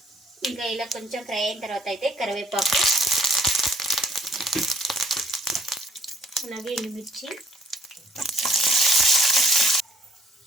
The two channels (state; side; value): normal; both; correlation 0.61